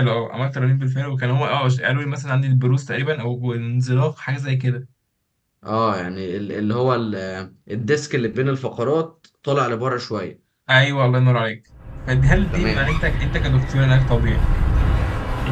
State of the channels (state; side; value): identical; both; correlation 1.00